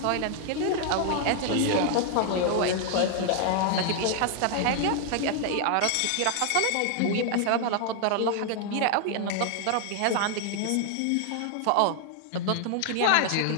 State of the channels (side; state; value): both; different; correlation 0.00